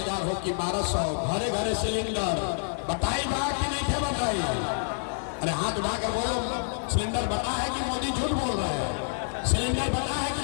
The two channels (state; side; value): silent; right; digital silence